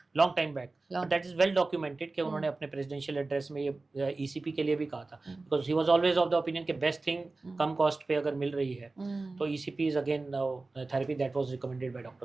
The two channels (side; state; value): left; quieter; 3.4 dB